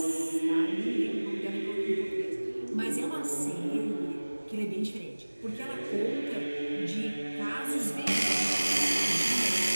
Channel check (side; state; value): both; inverted; correlation -1.00